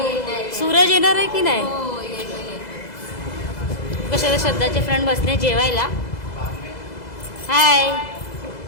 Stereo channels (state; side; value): late; right; 2.0 ms